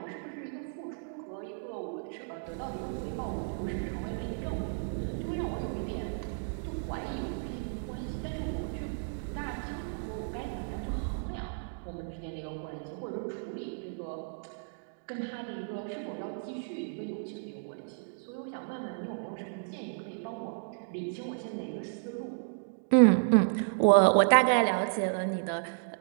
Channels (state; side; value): silent; left; digital silence